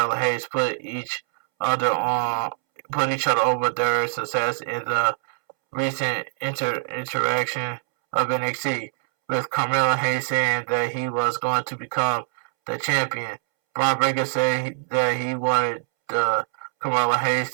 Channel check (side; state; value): left; silent; 63 dB below the other